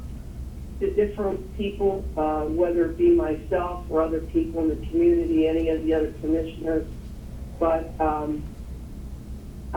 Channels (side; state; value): both; identical; correlation 1.00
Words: to different people, whether it be myself or other people in the community, any of the other commissioners. But,